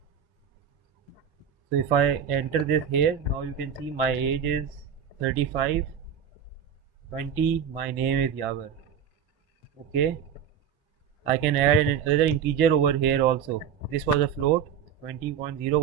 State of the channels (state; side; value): quieter; left; 8.0 dB